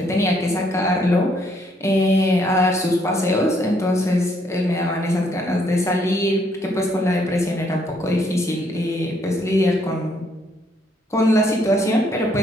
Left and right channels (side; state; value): both; normal; correlation 0.69